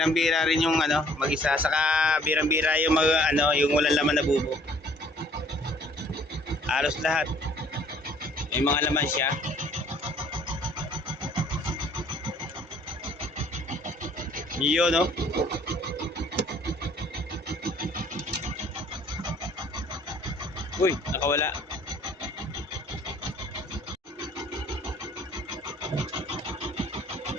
rin yung ano, mag-isa. Saka birang-bira yung yung walang laman na bubo. Halos lahat. May mga laman siya. Yun, no? Uy, nakawala.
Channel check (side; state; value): both; normal; correlation 0.57